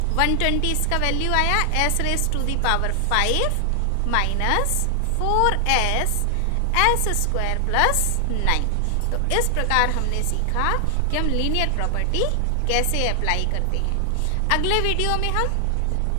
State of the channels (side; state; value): both; different; correlation 0.00